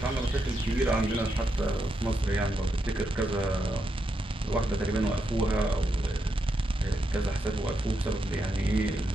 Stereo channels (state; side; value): normal; both; correlation 0.83